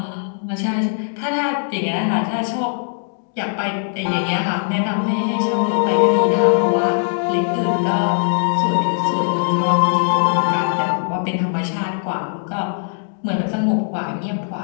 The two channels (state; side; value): silent; right; digital silence